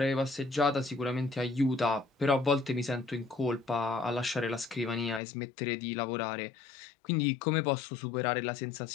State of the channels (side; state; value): right; drops out; at 5.2 s